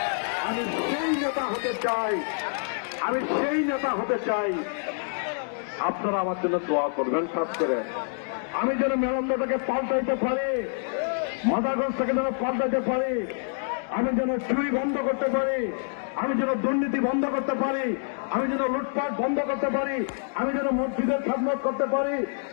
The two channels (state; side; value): silent; right; 60 dB below the other